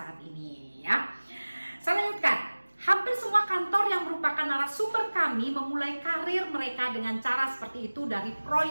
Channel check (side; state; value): both; inverted; correlation -1.00